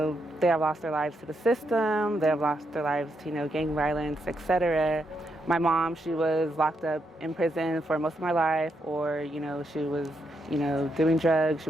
have lost their lives to the system, they have lost their lives to, gang violence, etc. My mom, she was locked up in prison for most of my life, or, she was, doing drugs, she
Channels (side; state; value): both; normal; correlation 0.80